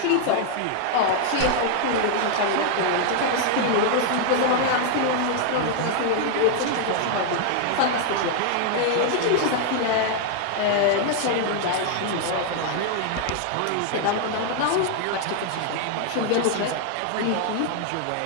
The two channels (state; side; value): different; both; correlation 0.00